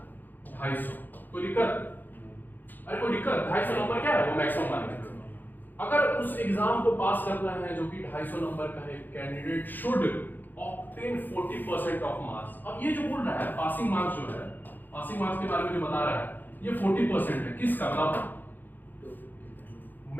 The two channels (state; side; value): late; right; 0.087 ms